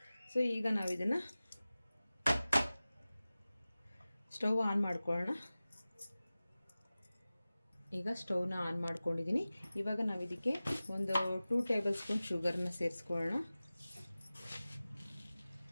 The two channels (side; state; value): both; inverted; correlation -0.97